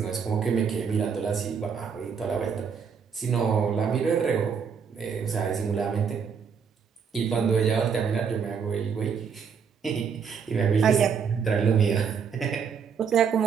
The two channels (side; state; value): left; quieter; 6.5 dB